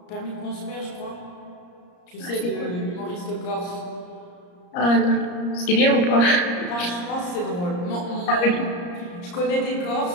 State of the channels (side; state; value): right; late; 34 ms